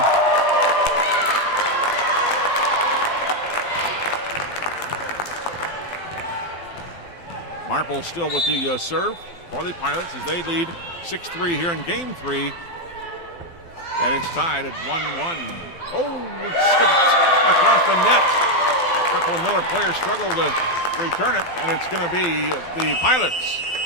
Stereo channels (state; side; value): late; right; 12 ms